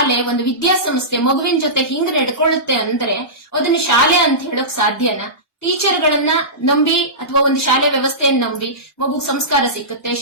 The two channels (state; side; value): normal; both; correlation -0.19